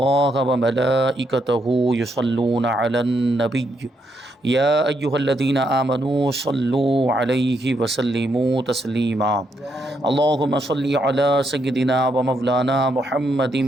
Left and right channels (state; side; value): normal; both; correlation 0.78